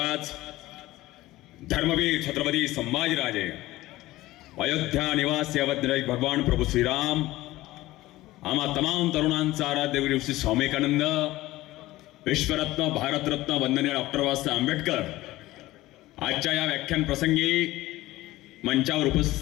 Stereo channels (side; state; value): right; quieter; 17.4 dB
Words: धर्मवीर छत्रपती संभाजीराजे, अयोध्या निवासी अवधराज भगवान प्रभू श्रीराम, आम्हा तमाम तरुणांचा आराध्य गुरु श्री स्वामी विवेकानंद, विश्वरत्न भारतरत्न वंदनीय डॉक्टर बाबासाहेब आंबेडकर आजच्या या व्याख्यान प्रसंगी मंचावर